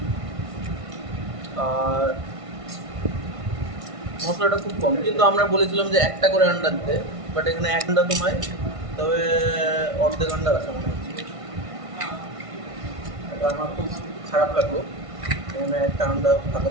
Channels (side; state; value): left; late; 1.5 ms